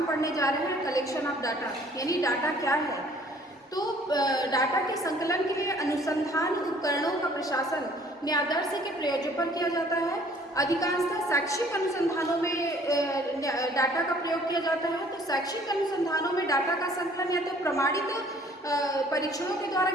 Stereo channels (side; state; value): both; normal; correlation 0.56